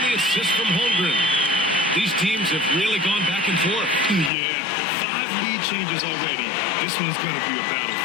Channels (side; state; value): right; drops out; at 4.3 s